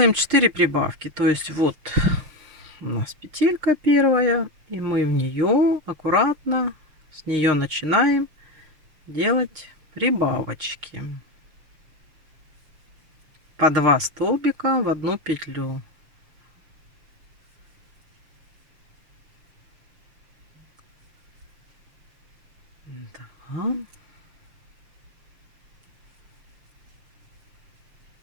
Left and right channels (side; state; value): left; late; 6.6 ms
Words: 4 прибавки. То есть вот у нас петелька первая, и мы в нее аккуратно с нее начинаем делать прибавочки. По 2 столбика в одну петлю. 2.